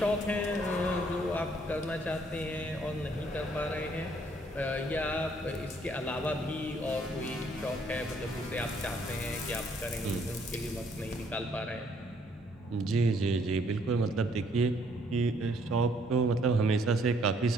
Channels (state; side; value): normal; both; correlation 0.65